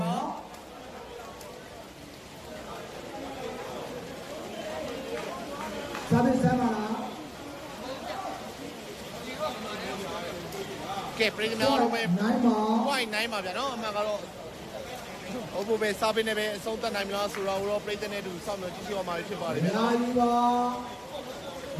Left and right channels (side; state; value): both; identical; correlation 1.00